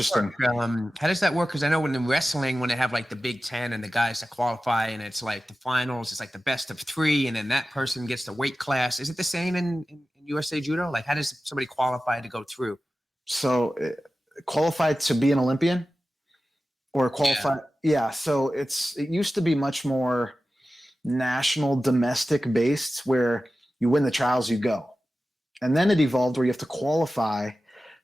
How does that work? Because I know in wrestling, when they have like the Big Ten and the guys that qualify, and it's like the finals, it's like the best of 3, and then that person gets the weight class. Is it the same in USA Judo? Like, how does somebody qualify to go through? So qualified to be an Olympian or qualify? Yeah. So it used to be much more national, domestic based, where you win the trials, you go. And then it evolved where you have to qualify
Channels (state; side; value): normal; both; correlation 0.94